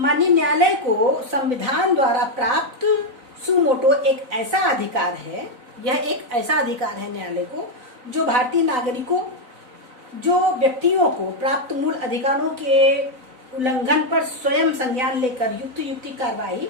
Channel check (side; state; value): left; late; 4.0 ms